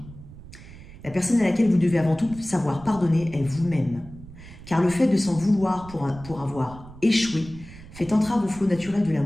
La personne à laquelle vous devez avant tout savoir pardonner est vous-même. Car le fait de s'en vouloir pour avoir échoué fait entrave au flot naturel de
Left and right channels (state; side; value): noise; right; rumble, 17 dB below the sound